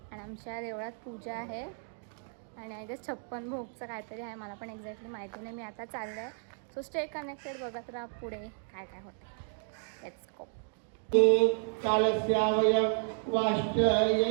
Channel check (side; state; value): left; silent; 56 dB below the other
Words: आणि आमच्या देवळात पूजा आहे आणि आय गेस 56 भोगचं काहीतरी आहे. मला पण एक्झॅक्टली माहिती नाही. मी आता चाललं आहे. सो स्टे कनेक्टेड, बघत राहा पुढे काय काय होतं. Let's go. कालस्यावय